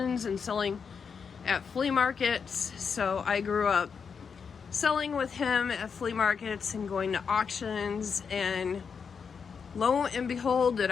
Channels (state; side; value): quieter; right; 6.1 dB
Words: and selling at flea markets. So I grew up selling with him at flea markets and going to auctions, and lo and behold, did